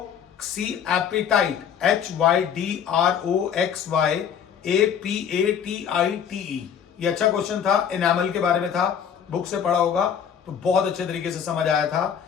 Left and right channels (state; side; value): quieter; right; 8.1 dB